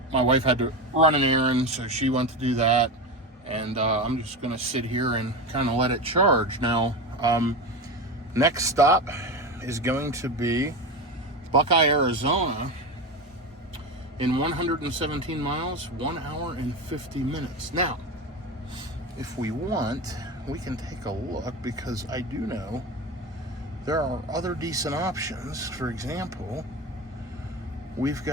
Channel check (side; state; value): both; normal; correlation 0.22